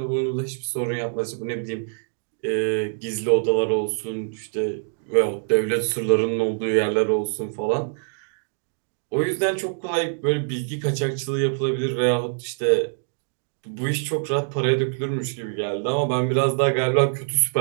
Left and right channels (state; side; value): silent; left; digital silence